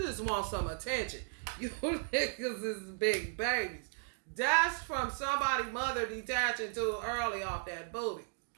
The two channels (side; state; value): left; silent; digital silence